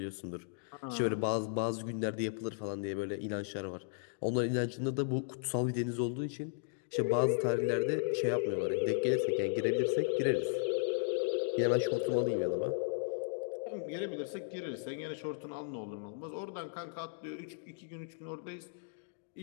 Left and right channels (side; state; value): right; silent; digital silence